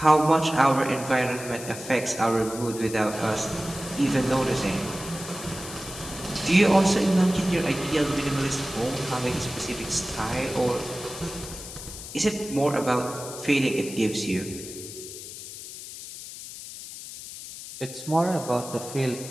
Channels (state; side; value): noise; left; hiss, 12 dB below the sound